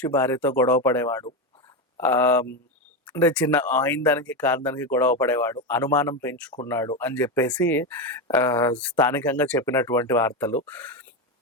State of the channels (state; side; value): normal; both; correlation 0.13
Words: భార్యతో గొడవ పడేవాడు. ఆహ్, అంటే చిన్న అయిన దానికి, కాని దానికి గొడవ పడేవాడు. అనుమానం పెంచుకున్నాడు అని జెప్పేసి స్థానికంగా చెప్పినటువంటి వార్తలు.